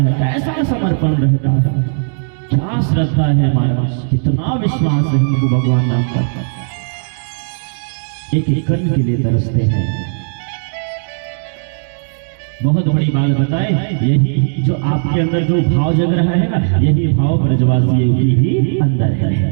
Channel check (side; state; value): left; silent; digital silence